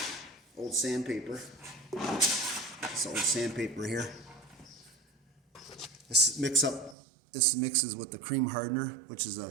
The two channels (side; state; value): left; drops out; at 7.0 s